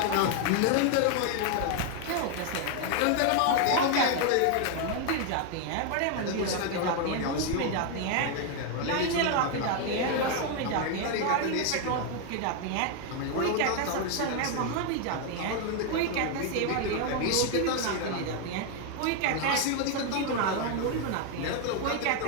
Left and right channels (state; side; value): different; both; correlation 0.01